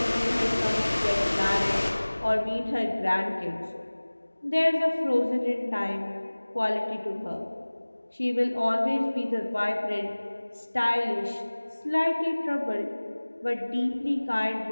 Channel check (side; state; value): both; inverted; correlation -1.00